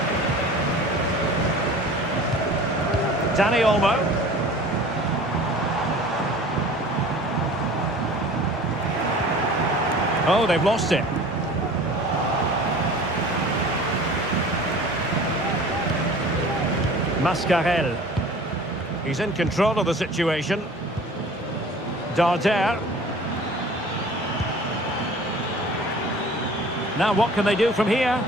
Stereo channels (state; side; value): normal; both; correlation 0.44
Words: Dani Olmo. Oh, they've lost it. Mascarell. He's in control of the situation. Darder. Now what can they do from here?